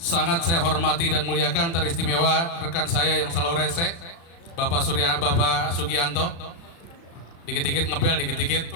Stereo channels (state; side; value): late; right; 36 ms